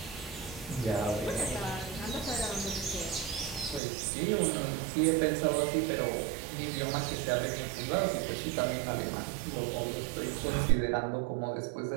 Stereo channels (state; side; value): drops out; left; at 3.8 s